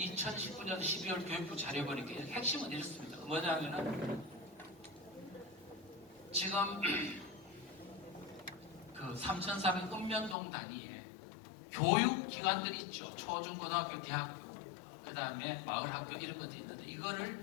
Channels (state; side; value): drops out; right; at 10.4 s